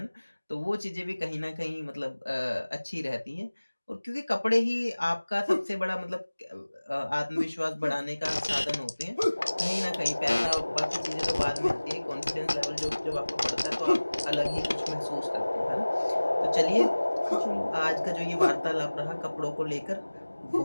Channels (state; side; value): inverted; both; correlation -1.00